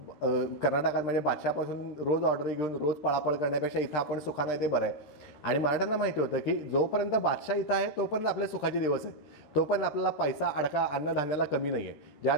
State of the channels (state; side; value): late; right; 13 ms